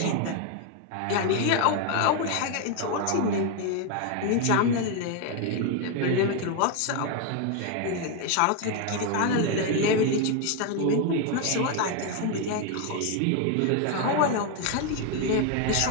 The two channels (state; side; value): different; both; correlation 0.01